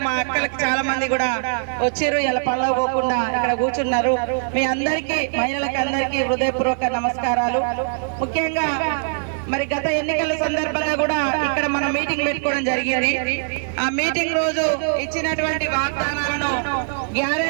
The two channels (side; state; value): left; silent; digital silence